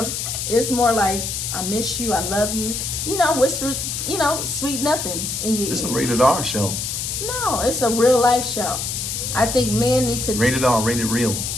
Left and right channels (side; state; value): left; noise; hiss, 3 dB below the sound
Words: It's more like I miss you, I love you. Whisper, sweet nothings in your This is a ear. rated R show. No, it's a real life show. I think men need to Rated R, rated real.